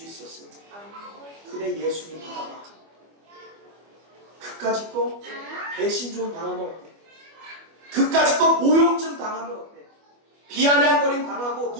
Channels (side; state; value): left; late; 25 ms